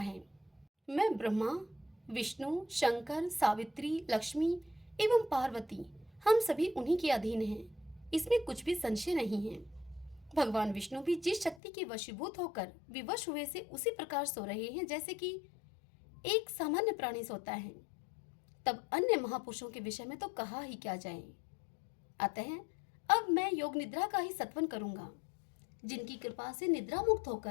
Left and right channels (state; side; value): drops out; right; at 11.6 s